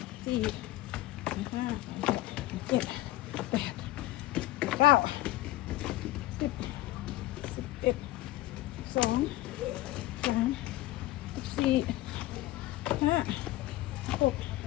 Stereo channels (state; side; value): quieter; right; 16.6 dB